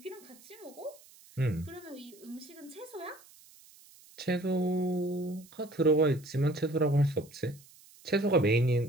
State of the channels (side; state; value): right; noise; hiss, 24 dB below the sound